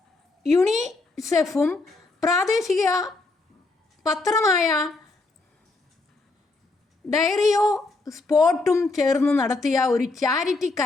യുണിസെഫും പ്രാദേശിക പത്രമായ ഡയറിയോ സ്പോർട്ടും ചേർന്ന് നടത്തിയ ഒരു ചാരിറ്റി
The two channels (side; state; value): right; quieter; 3.4 dB